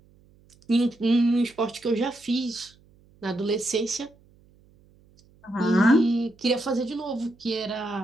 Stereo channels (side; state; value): right; noise; hum, 30 dB below the sound